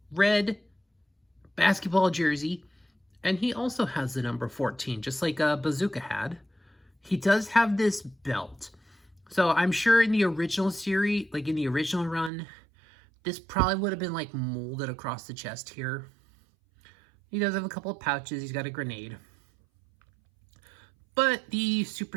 red basketball jersey, and he also has the number 14, just like Bazooka had. He does have this belt. So I'm sure in the original series, like in the original run, this probably would have been like molded across the chest here. He does have a couple of pouches. He's got a grenade. But the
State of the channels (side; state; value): left; drops out; at 12.3 s